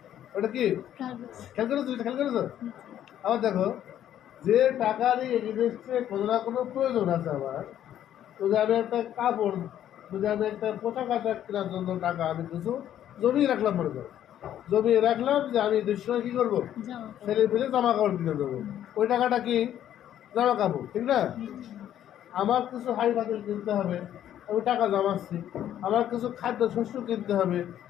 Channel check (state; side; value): quieter; right; 11.1 dB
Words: ওটা কি? কাগজ। খেয়াল করেছো? খেয়াল করেছো? আবার দেখো, যে টাকারই এগেনস্টে কোনো না কোনো প্রয়োজন আছে আমার, যদি আমি একটা কাপড়, যদি আমি একটা পোশাক আশাক কেনার জন্য টাকা আমি কিছু জমিয়ে রাখলাম, মনে করো জমিয়ে রাখলাম যে আমি দুসময় কী করবো, জামা ছেলে ফেলে জামা কাপড় কিনে দেবো, ওই টাকাটা কি? জামা কাপড়, ঠিক না? আমার কিছু হাই ফাতিল কিনতে হবে, আমি টাকা জমাচ্ছি, আমার কিছু খাদ্য শস্য কিনতে হবে,